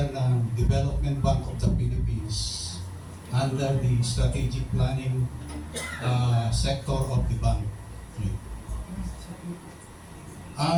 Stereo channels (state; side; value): identical; both; correlation 1.00